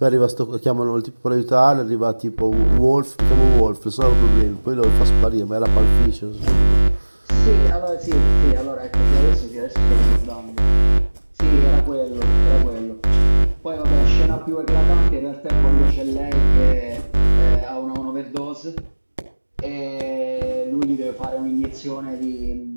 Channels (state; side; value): inverted; both; correlation -1.00